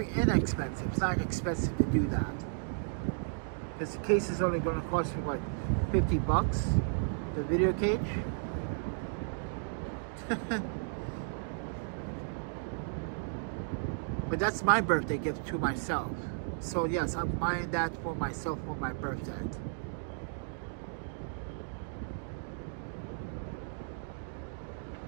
inexpensive. It's not expensive to do that, because the case is only going to cost me like $50, the video cage. But that's my birthday gift to myself. So yes, I'm buying that for myself for my birthday.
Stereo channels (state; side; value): silent; left; digital silence